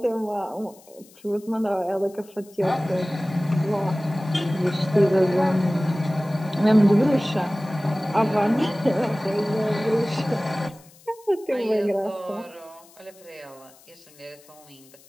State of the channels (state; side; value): noise; left; hiss, 26 dB below the sound